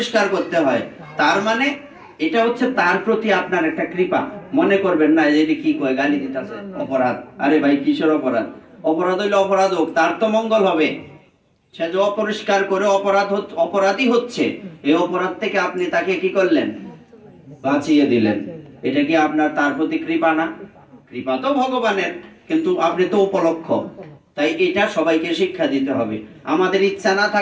করতে হয়। তার মানে এটা হচ্ছে তার প্রতি আপনার একটা কৃপা। মনে করবেন না যে কি কয় গালি দিতেছে, অপরাধ। আরে ভাই কিসের অপরাধ? অপরাধ হইলে অপরাধ হোক, তার তো মঙ্গল হবে। সে যে অপরিষ্কার করে অপরাধী হচ্ছে, এই অপরাধ থেকে আপনি তাকে কি করলেন, বাঁচিয়ে দিলেন। এটা কি আপনার তার প্রতি কৃপা না? কৃপা তো ভগবানের, কিন্তু আপনি তো উপলক্ষ। তাই এটা সবাইকে শিক্ষা দিতে হবে। আমাদের ইচ্ছা না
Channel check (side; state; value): both; identical; correlation 1.00